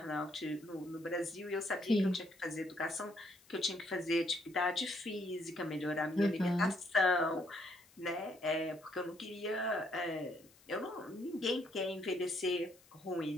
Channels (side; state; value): left; noise; hiss, 27 dB below the sound